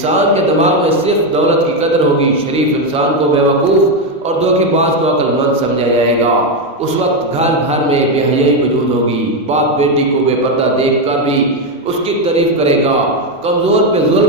کے دماغ میں صرف دولت کی قدر ہوگی، شریف انسان کو بیوقوف اور دھوکے باز کو عقل مند سمجھا جائے گا۔ اس وقت گھر گھر میں بے حیائی موجود ہوگی، باپ بیٹی کو بے پردہ دیکھ کر بھی اس کی تعریف کرے گا، کمزور پہ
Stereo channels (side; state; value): both; normal; correlation 0.07